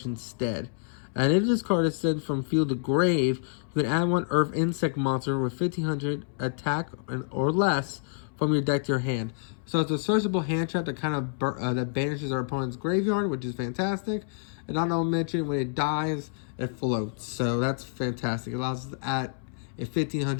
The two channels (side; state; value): right; silent; 59 dB below the other